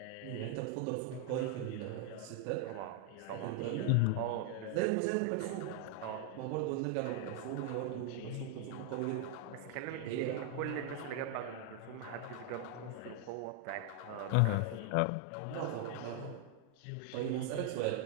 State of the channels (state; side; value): different; both; correlation 0.00